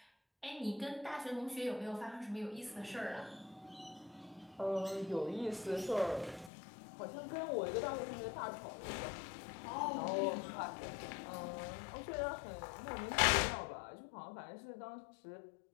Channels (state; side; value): drops out; right; at 6.5 s